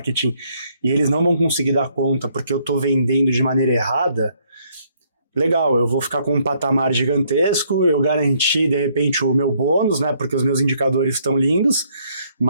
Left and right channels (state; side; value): inverted; both; correlation -0.68